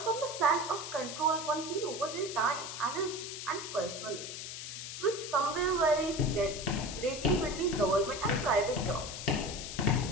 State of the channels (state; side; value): noise; left; hiss, 8 dB below the sound